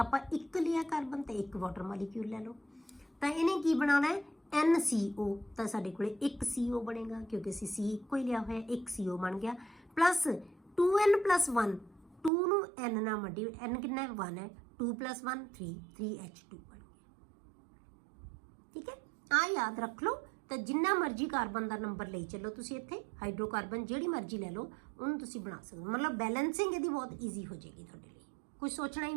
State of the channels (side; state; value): left; drops out; at 12.3 s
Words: ਆਪਾਂ ਇੱਕ ਲਿਆ ਕਾਰਬਨ ਤੇ ਇੱਕ ਵਾਟਰ ਮੋਲੀਕਿਊਲ ਲੈ ਲਓ, ਤਾਂ ਇਹਨੇ ਕੀ ਬਣਾਉਣਾ ਹੈ NCO, ਤਾਂ ਸਾਡੇ ਕੋਲੇ ਇੱਕ CO ਬਣੇਗਾ, ਕਿਉਂਕਿ ਅਸੀਂ C ਇੱਕੋ ਹੀ ਲਿਆ ਹੋਇਆ, ਇੱਕ CO ਬਣ ਗਿਆ, ਪਲੱਸ 2n+1, 2 ਨੂੰ N ਨਾਲ ਮਲਟੀ, N ਕਿੰਨਾ ਹੈ 1 ਹੈ, 2 + 1 3, 3H2 ਬਣ ਗਿਆ, ਠੀਕ ਹੈ। ਆ ਯਾਦ ਰੱਖ ਲਓ। ਤਾਂ ਜਿੰਨਾ ਮਰਜ਼ੀ ਕਾਰਬਨ ਦਾ ਨੰਬਰ ਲਈ ਚੱਲੋ ਤੁਸੀਂ, ਇੱਥੇ ਹਾਈਡਰੋਕਾਰਬਨ ਜਿਹੜੀ ਮਰਜ਼ੀ ਲੈ ਲਓ ਉਹਨੂੰ ਤੁਸੀਂ ਬਣਾ ਸਕਦੇ ਹੋ, ਮਤਲਬ ਬੈਲੈਂਸਿੰਗ ਇਹਦੀ ਬਹੁਤ ਈਜ਼ੀ ਹੋ ਜਾਏਗੀ ਤੁਹਾਡੇ ਲਈ, ਕੁਝ ਸੋਚਣਾ ਹੀ